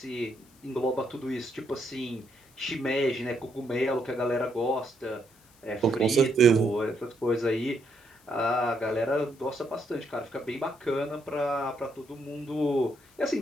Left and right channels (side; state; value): left; noise; hiss, 29 dB below the sound